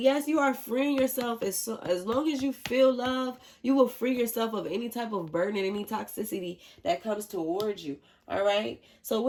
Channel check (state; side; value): identical; both; correlation 1.00